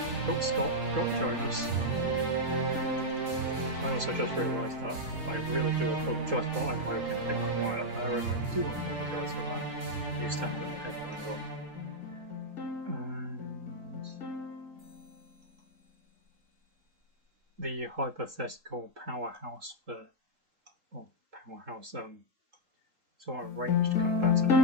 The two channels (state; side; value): late; left; 3.8 ms